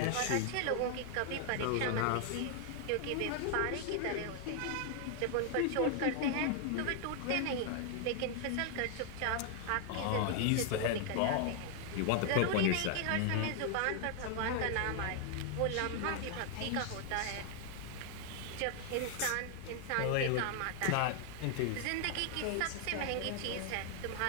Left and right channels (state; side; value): different; both; correlation 0.00